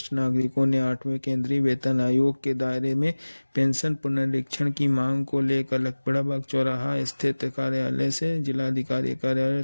नागरिकों ने 8वें केंद्रीय वेतन आयोग के दायरे में पेंशन पुनरीक्षण की मांग को लेकर लखपतबाग चौराहा स्थित कार्यालय से जिलाधिकारी कार्यालय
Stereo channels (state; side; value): inverted; both; correlation -1.00